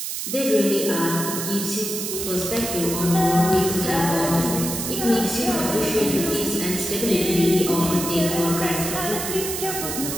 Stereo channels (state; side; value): noise; right; hiss, 4 dB below the sound